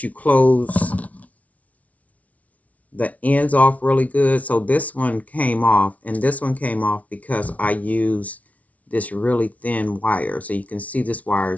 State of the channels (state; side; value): late; right; 0.068 ms